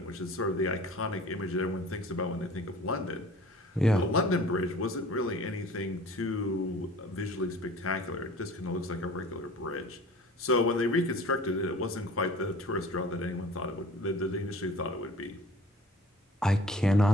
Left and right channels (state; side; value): normal; both; correlation 0.46